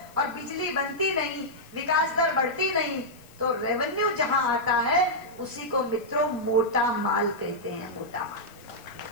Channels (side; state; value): left; noise; hiss, 26 dB below the sound